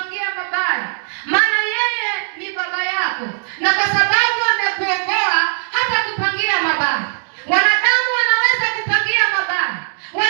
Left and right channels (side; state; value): left; silent; 67 dB below the other